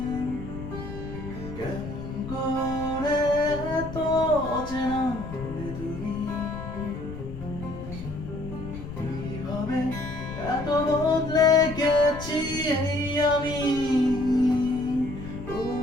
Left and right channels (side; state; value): left; noise; rumble, 10 dB below the sound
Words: কেমন করে তো চেনা হলে তুমি কিভাবে এত বদলে গেছি এই আমি